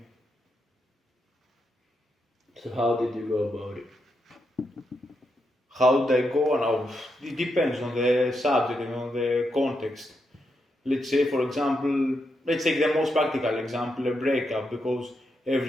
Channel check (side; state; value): both; normal; correlation 0.83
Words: So how did you go about it? How did I go? Now, it depends on the subject and on the context. Let's say, for example, let's take the most practical example, a breakup, because